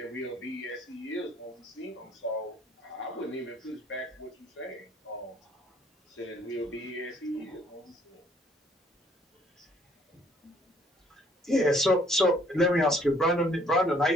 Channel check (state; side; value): normal; both; correlation 0.62